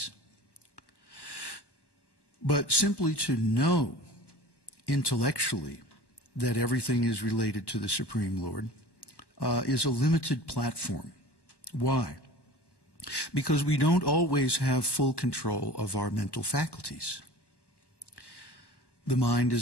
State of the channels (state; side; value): late; right; 1.1 ms